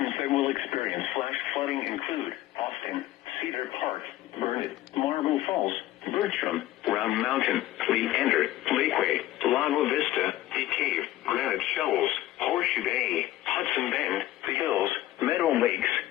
that will experience flash flooding include Austin, Cedar Park, Burnett, Marble Falls, Bertram, Round Mountain, Leander, Lakeway, Lago Vista, Bee Cave, Granite Shoals, Horseshoe Bay, Hudson Bend, The Hills, Meadow Lakes,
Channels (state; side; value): quieter; right; 15.1 dB